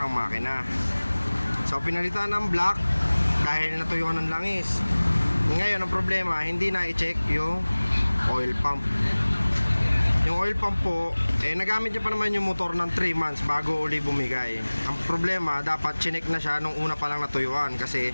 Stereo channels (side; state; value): both; inverted; correlation -1.00